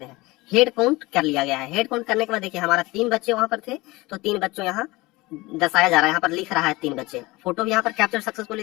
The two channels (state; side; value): quieter; right; 21.6 dB